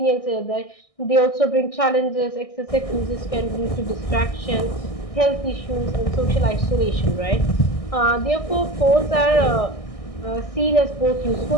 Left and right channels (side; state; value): right; late; 1.6 ms